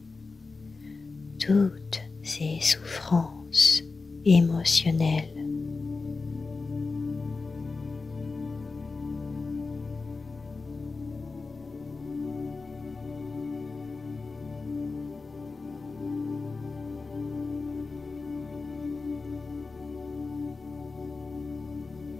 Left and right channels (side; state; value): right; quieter; 4.0 dB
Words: toutes ces souffrances émotionnelles.